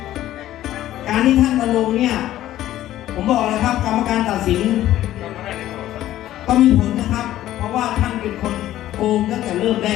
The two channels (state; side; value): quieter; right; 13.6 dB